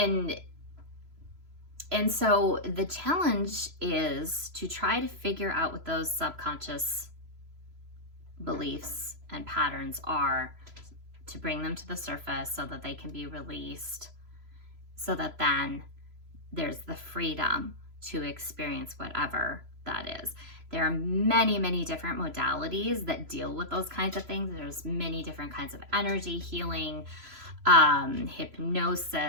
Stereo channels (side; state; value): left; late; 3.0 ms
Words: And so the challenge is to try to figure out what those subconscious beliefs and patterns are, to bring them to the surface so that they can be released, so that then there's the freedom to experience whatever that is. There are many, many different modalities that deal with those kinds of things. There's many different kinds of energy healing,